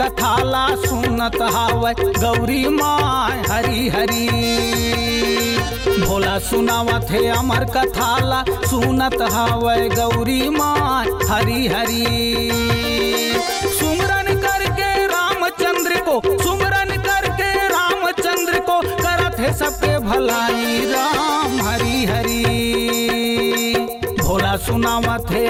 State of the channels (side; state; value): both; identical; correlation 1.00